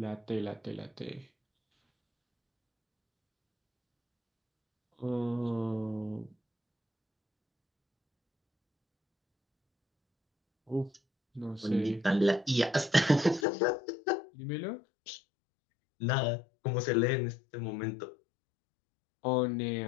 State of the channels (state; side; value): drops out; right; at 13.5 s